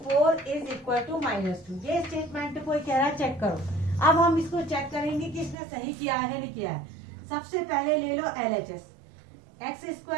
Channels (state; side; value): drops out; left; at 5.6 s